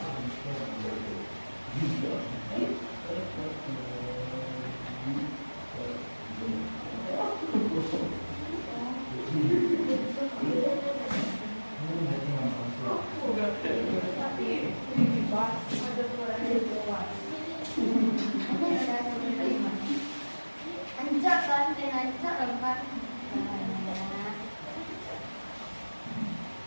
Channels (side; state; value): both; inverted; correlation -1.00